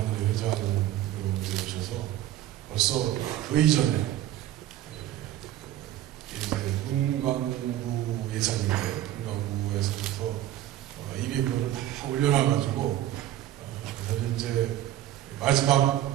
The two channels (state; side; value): quieter; left; 13.0 dB